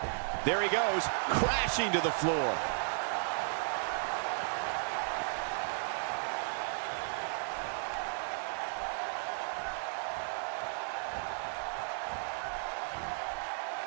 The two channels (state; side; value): silent; left; 55 dB below the other